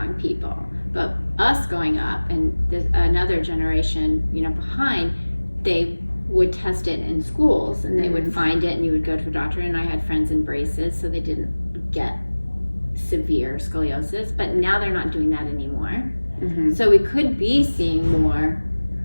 people. But us going up and another generation, behind, they would test it in schools and they would find it and you would go to a doctor. And I had friends in braces so they didn't get severe scoliosis, but now they're not doing that anymore. Mm-hmm. So we could be seeing more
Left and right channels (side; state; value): both; inverted; correlation -1.00